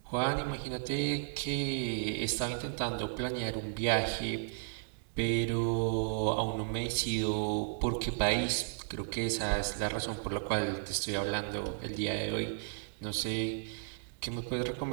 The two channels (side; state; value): left; silent; digital silence